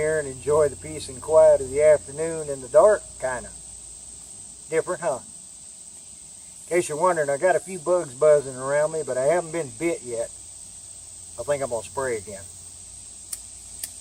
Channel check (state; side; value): identical; both; correlation 1.00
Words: and enjoy the peace and quiet of the afternoon in the dark, kind of. Different, huh? In case you're wondering, I got a few bugs buzzing around me, but I haven't been bit yet. I think I'm going to spray again.